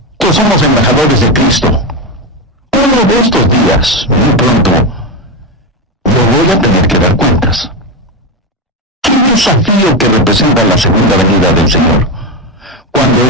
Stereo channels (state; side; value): normal; both; correlation 0.13